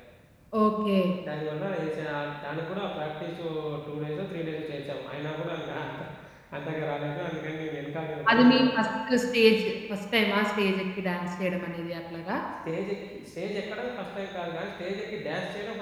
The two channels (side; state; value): both; identical; correlation 1.00